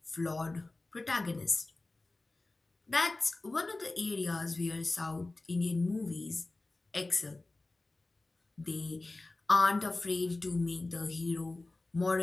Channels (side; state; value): right; quieter; 3.1 dB